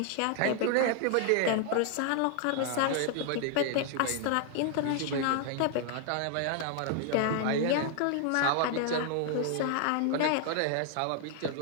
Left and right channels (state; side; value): different; both; correlation 0.00